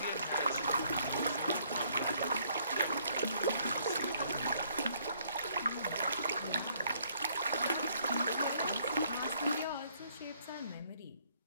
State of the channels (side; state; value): both; inverted; correlation -0.66